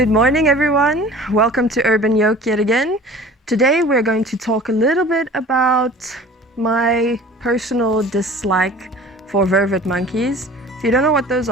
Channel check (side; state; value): both; normal; correlation 0.44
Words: morning, everyone. Welcome to Urban Yoke yet again. Today we're going to talk a little bit about my personal dislike for vervet monkeys. If you don't know what those